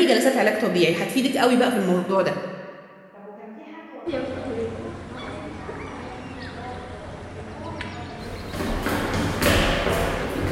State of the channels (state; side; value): identical; both; correlation 1.00